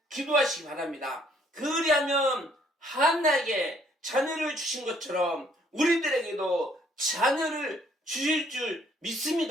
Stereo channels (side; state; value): both; normal; correlation 0.64